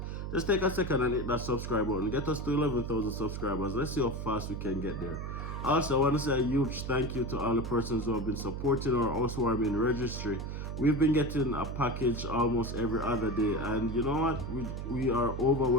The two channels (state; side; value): noise; right; hum, 5 dB below the sound